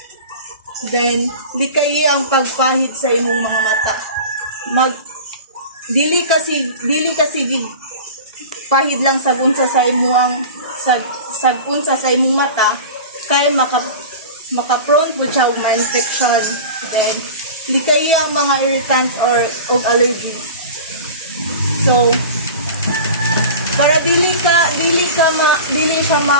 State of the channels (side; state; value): both; inverted; correlation -0.35